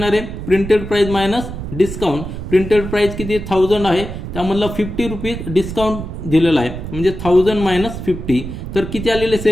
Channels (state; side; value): noise; right; rumble, 8 dB below the sound